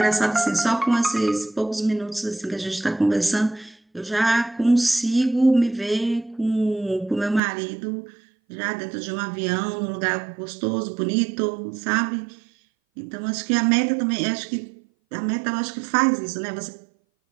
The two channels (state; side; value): drops out; left; at 7.4 s